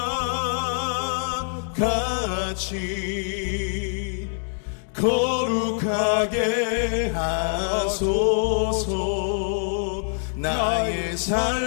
거룩하게 하소서. 나의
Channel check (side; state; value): right; silent; 62 dB below the other